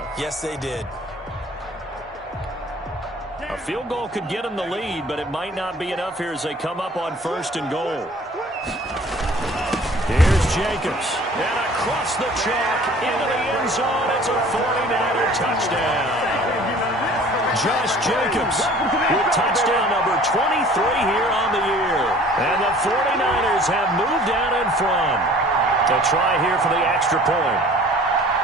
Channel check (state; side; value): normal; both; correlation 0.50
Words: Yes, they did. A field goal could get them the lead, but it might not be enough here as they come up on first and goal. Here's Jacobs. And across the chalk into the end zone. It's a 49er touchdown. Josh Jacobs with touchdown number 23 here on the year. And the 49ers have moved out in front. To try here for the extra point.